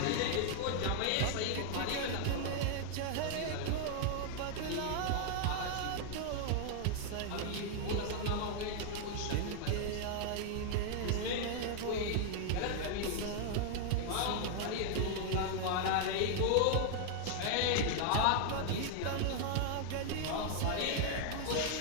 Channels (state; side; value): different; both; correlation 0.00